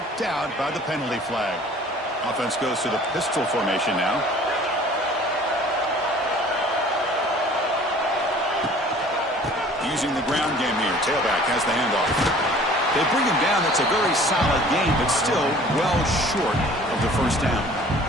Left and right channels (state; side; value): normal; both; correlation 0.50